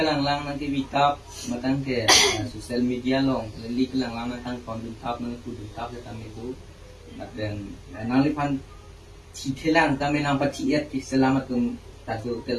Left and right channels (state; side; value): identical; both; correlation 1.00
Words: lang nanti bitap matang ke sosial media long kali kalang lang nang kondum tap nang kudum tap kita itu dan anang liphan citelang kami nang patiat di selamat tum tadu